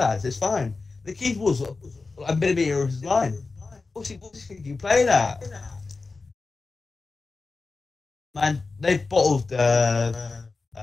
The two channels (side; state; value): right; quieter; 3.9 dB